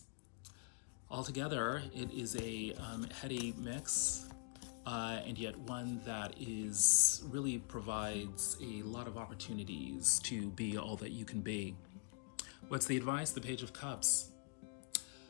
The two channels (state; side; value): quieter; right; 37.6 dB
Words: Altogether, it is a heady mix. And yet one that really provides a lot of opportunities to be all that you can be. What's the advice? The Page of Cups.